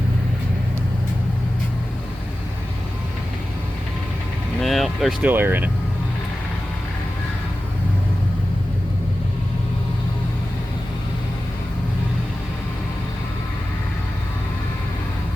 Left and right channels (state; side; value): normal; both; correlation 0.94